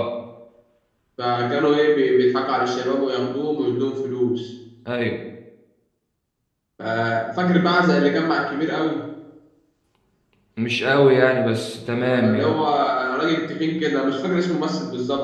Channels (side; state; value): both; identical; correlation 1.00